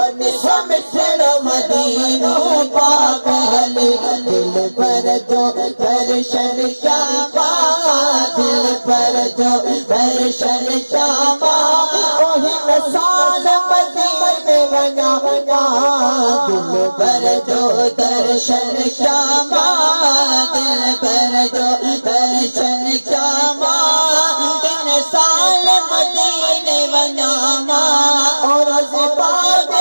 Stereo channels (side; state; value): both; inverted; correlation -1.00